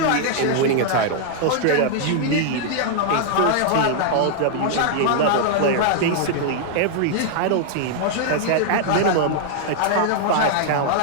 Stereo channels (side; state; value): both; different; correlation -0.01